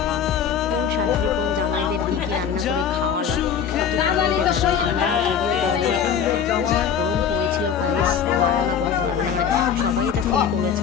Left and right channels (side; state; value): right; quieter; 7.6 dB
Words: কোন শাশুড়ি কোন জামাইদের কী রান্না করে খাওয়ালো একটু কমেন্টে জানো। আমরা যদিও গরমে, এত গরম পড়েছিল গাইস, ধারণা করতে পারবে না। মানে সবাই এটা ফিল করেছে